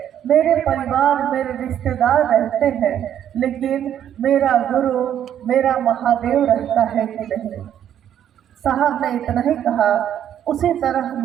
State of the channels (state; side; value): quieter; left; 10.1 dB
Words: मेरे परिवार, मेरे रिश्तेदार रहते हैं, लेकिन मेरा गुरु, मेरा महादेव रहता है कि नहीं? साहब ने इतना ही कहा। उसी तरह